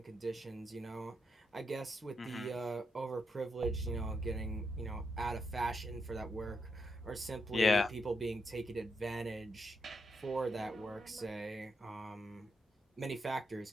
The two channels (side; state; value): both; normal; correlation 0.82